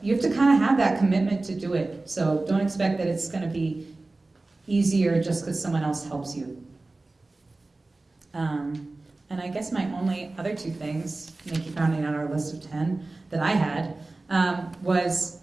you have to kind of have that commitment to do it. So don't expect that it's going to be easier just because someone else helps you. And I guess my only other two things, Nikki rounding out our list of 10 that I had, was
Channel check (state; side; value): quieter; left; 3.2 dB